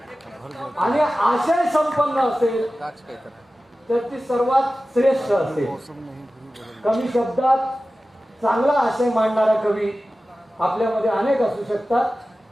आणि आशय संपन्न असेल तर ती सर्वात श्रेष्ठ असेल. कमी शब्दात चांगला आशय मांडणारा कवी आपल्यामध्ये अनेक असू शकतात.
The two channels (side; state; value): both; normal; correlation 0.95